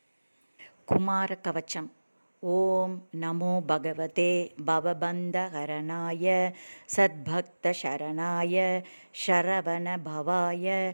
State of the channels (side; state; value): both; inverted; correlation -1.00